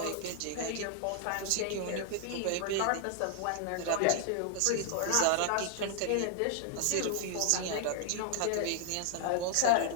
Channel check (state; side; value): different; both; correlation 0.00